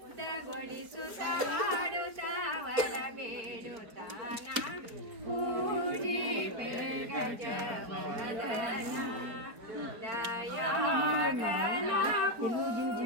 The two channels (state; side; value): late; left; 4.5 ms